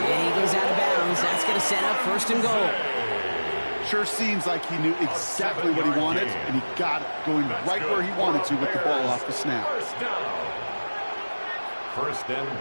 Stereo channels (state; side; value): inverted; both; correlation -1.00